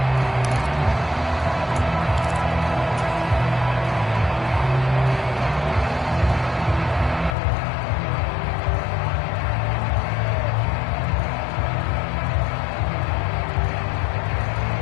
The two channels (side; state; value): right; drops out; at 7.4 s